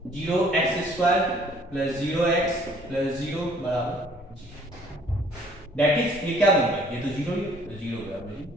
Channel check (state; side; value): normal; both; correlation 0.58